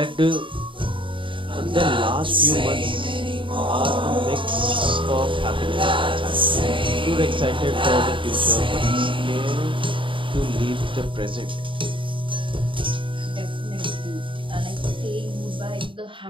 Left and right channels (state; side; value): late; left; 0.25 ms